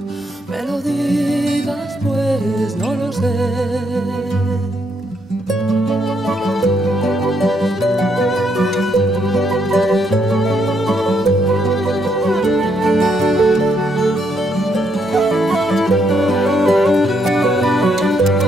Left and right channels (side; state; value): both; normal; correlation 0.75